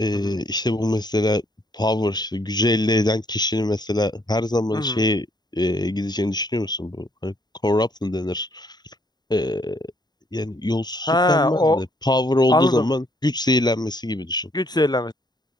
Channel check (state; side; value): late; right; 0.20 ms